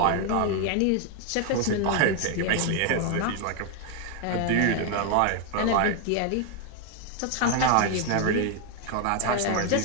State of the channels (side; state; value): both; different; correlation 0.01